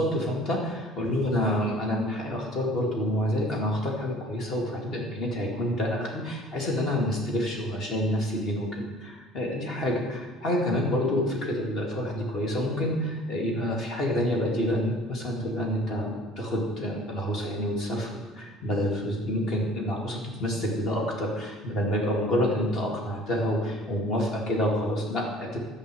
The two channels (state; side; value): normal; both; correlation 0.50